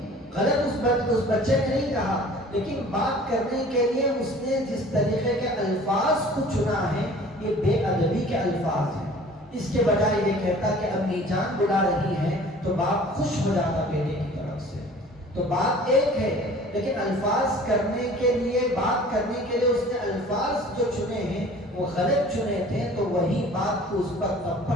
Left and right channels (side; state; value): both; normal; correlation 0.47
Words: غلط اس بچے نے نہیں کہا، لیکن بات کرنے کے لیے اس نے جس طریقے کے الفاظ کو چنا ہے یہ بے ادبی کے الفاظ ہیں۔ اس کے بجائے یہ کہتا کہ امی جان بلا رہی ہے تو باپ خوش ہو جاتا بیٹے کی طرف سے۔ تو بات ایک ہے، لیکن الفاظ کرنے کے لیے، بات کرنے کے لیے اس نے الفاظ جو چنے ہیں وہ غلط چنے تھے، تو وہی بات کو اس پر